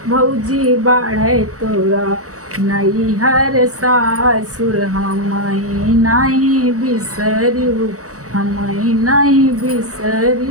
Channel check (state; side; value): late; left; 0.65 ms